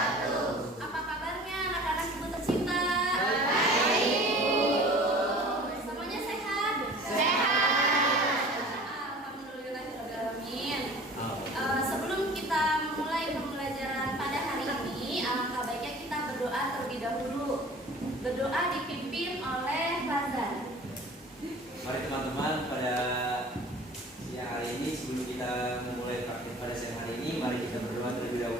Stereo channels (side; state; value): both; normal; correlation 0.44